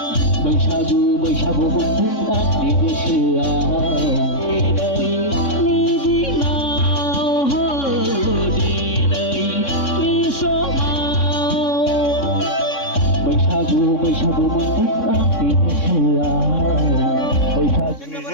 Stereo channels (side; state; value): right; late; 3.6 ms